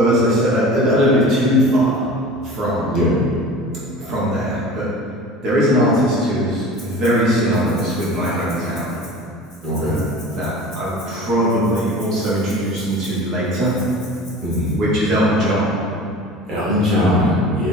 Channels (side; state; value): both; normal; correlation 0.38